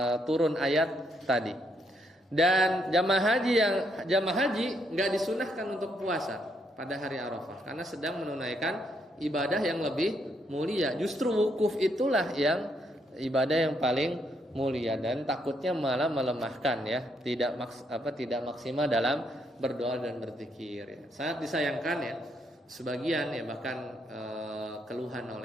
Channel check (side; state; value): both; normal; correlation 0.75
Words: turun ayat tadi. Dan jamaah haji nggak disunahkan untuk puasa pada hari Arafah karena sedang menunaikan ibadah yang lebih mulia. Justru wukuf itulah yang ibadah yang paling mulia dan takutnya malah melemahkan ya, tidak maksimal dalam berdoa dan berzikir ya. Sangat disayangkan ya, sebagian ya bahkan keluhan